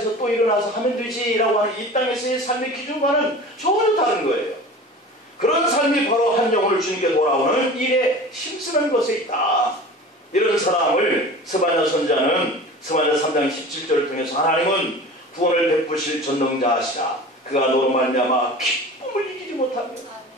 또 일어나서 하면 되지라고 하는 이 땅에서의 삶의 기준과는 전혀 다른 거예요. 그런 삶이 바로 한 영혼을 주님께 돌아오는 일에 힘쓰는 것에 있다. 이런 사람을 스바냐 선지자는 스바냐 3장 17절을 통해서 하나님은 구원을 베푸실 전능자하시라. 그가 너로 말미암아 기쁨을 이기지 못하며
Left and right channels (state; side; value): normal; both; correlation 0.38